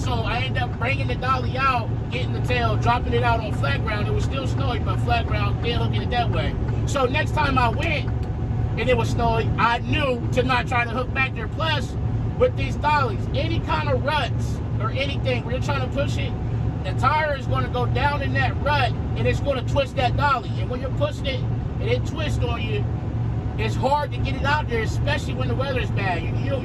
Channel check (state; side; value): identical; both; correlation 1.00